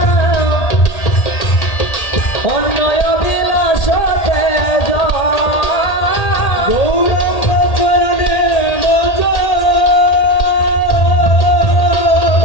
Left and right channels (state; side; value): late; right; 1.8 ms